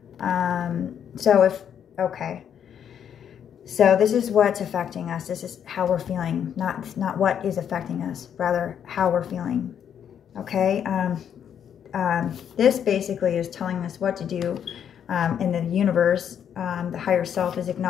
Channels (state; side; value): quieter; right; 8.7 dB